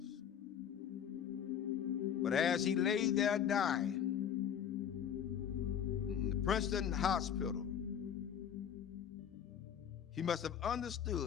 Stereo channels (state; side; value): quieter; right; 8.7 dB